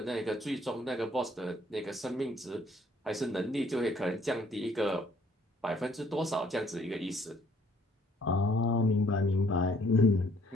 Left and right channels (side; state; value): both; normal; correlation 0.62